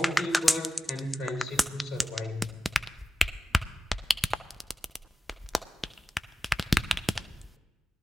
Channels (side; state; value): both; normal; correlation 0.95